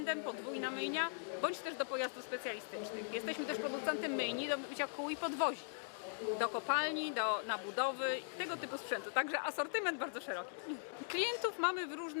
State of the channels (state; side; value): silent; right; digital silence